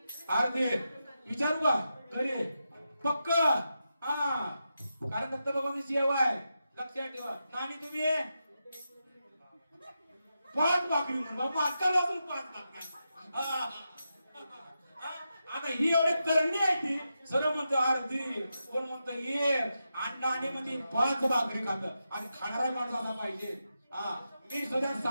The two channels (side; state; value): both; inverted; correlation -0.88